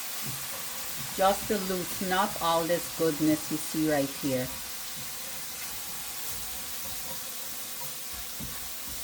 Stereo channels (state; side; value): identical; both; correlation 1.00